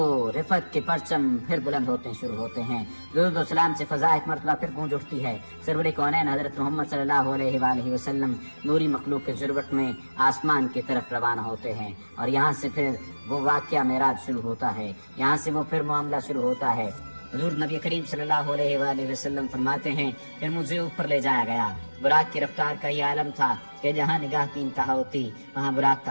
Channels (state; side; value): inverted; both; correlation -1.00